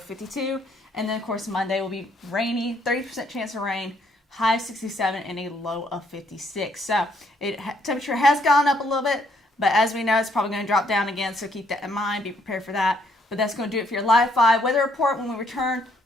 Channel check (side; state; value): both; normal; correlation 0.69